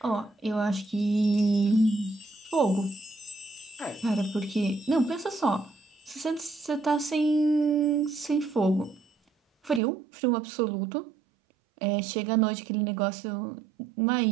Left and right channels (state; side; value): drops out; left; at 9.8 s